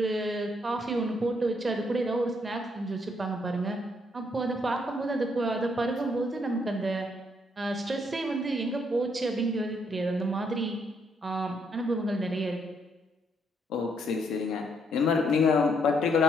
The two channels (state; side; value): normal; both; correlation 0.72